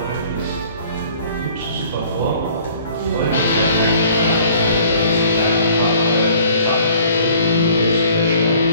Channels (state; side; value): inverted; both; correlation -0.55